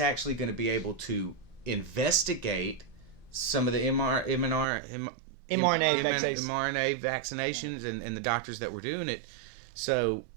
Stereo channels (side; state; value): left; drops out; at 4.7 s